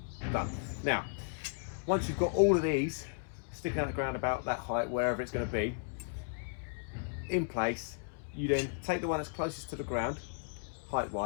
Done. Now, once you've got all of these sticking out the ground about that height, wherever it's going to be, in place, you then take the one that's closest to the ground,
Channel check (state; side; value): silent; right; digital silence